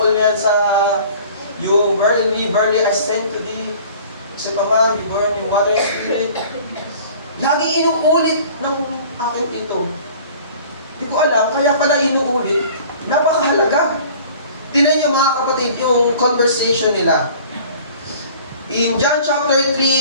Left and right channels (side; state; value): both; inverted; correlation -0.47